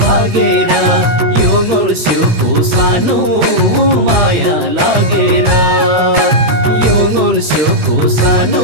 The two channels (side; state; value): left; late; 13 ms